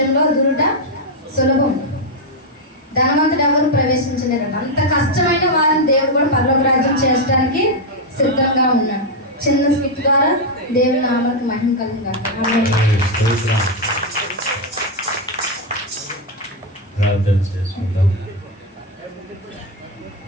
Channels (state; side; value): normal; both; correlation 0.02